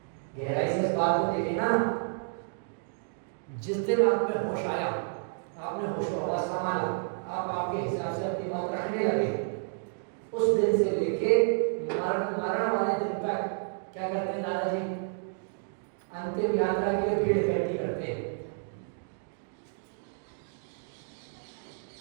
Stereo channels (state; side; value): silent; left; digital silence